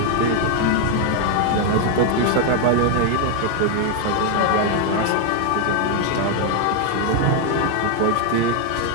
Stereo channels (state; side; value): different; both; correlation 0.01